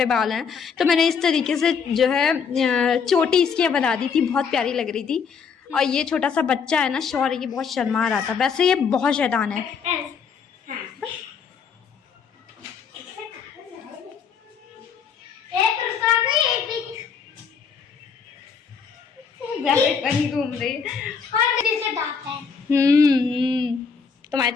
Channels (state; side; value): quieter; right; 6.2 dB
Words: बाल हैं, तो मैंने इस तरीके से जो है चोटी इसकी बना दी थी, बहुत प्यारी लग रही थी। और ये छोटा सा बच्चा है ना शौर्य, ये बहुत शर्मा रहा था, वैसे ये बहुत शैतान है। रैबिट बनी घूम रही तुम्हारे